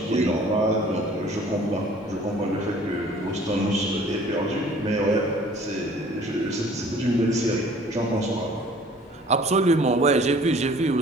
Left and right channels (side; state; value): both; normal; correlation 0.52